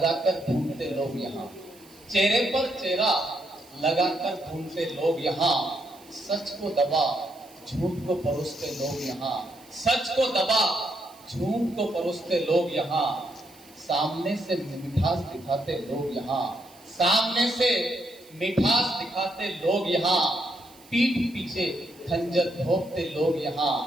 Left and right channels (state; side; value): noise; right; hiss, 25 dB below the sound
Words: ढूंढते लोग यहाँ, चेहरे पर चेहरा लगाकर ढूंढते लोग यहाँ। सच को दबा झूठ को परोसते लोग यहाँ, सच को दबा झूठ को परोसते लोग यहाँ। सामने से मिठास दिखाते लोग यहाँ, सामने से मिठास दिखाते लोग यहाँ। पीठ पीछे खंजर भोंकते लोग यहाँ,